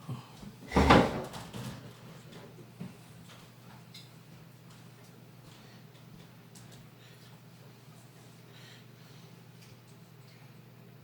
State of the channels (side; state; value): both; identical; correlation 1.00